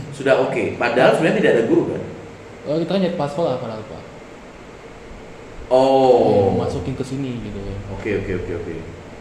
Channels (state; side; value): identical; both; correlation 1.00